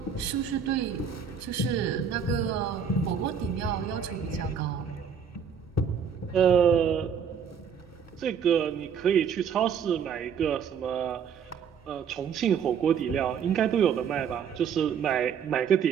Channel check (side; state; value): left; quieter; 7.2 dB